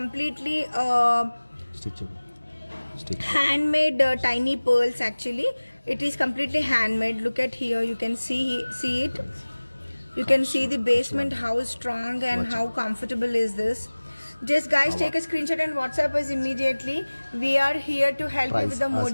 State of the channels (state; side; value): inverted; both; correlation -1.00